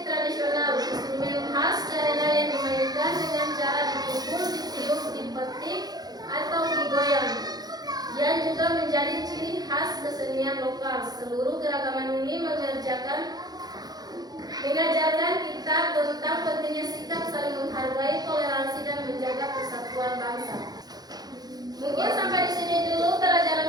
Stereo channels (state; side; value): late; left; 0.19 ms